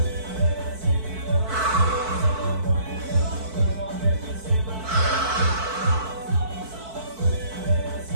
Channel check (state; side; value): late; left; 4.5 ms